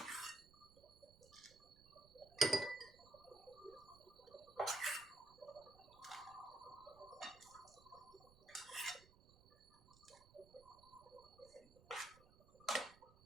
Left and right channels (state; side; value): noise; right; rumble, 23 dB below the sound